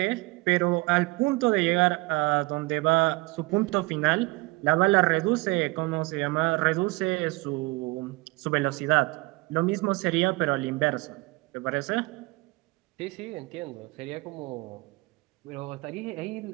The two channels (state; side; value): quieter; left; 24.0 dB